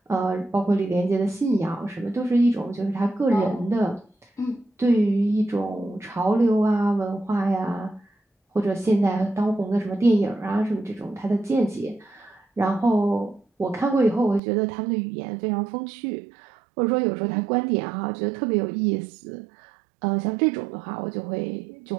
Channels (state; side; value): drops out; left; at 14.4 s